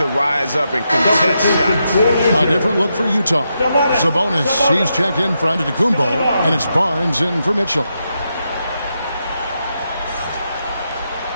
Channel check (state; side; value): inverted; both; correlation -0.84